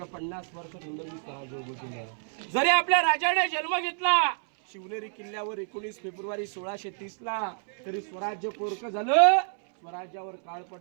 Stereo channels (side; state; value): left; silent; 59 dB below the other